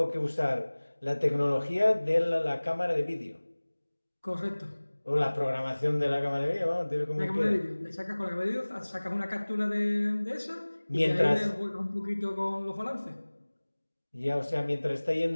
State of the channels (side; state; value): both; inverted; correlation -1.00